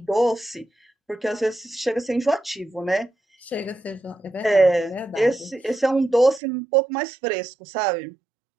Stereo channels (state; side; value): drops out; left; at 6.4 s